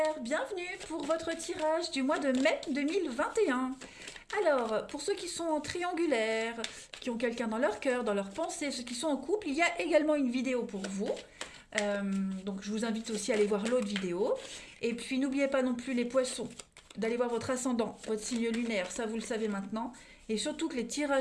bienvenue pour votre tirage du mois de mai 2021. Alors, pour ceux qui sont en triangulaire, qui ont quelqu'un dans leur cœur, dans leur pensée, ceux qui sont en couple, il y a également une vidéo pour vous. Donc je vous invite aussi à aller voir l'autre vidéo. Et puis n'oubliez pas non plus les poissons, d'aller voir votre ascendant, votre signe lunaire, ça vous le savez maintenant. Et surtout que les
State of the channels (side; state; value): both; identical; correlation 1.00